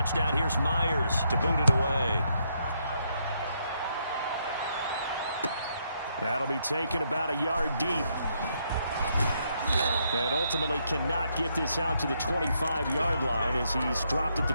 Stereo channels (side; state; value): both; inverted; correlation -0.76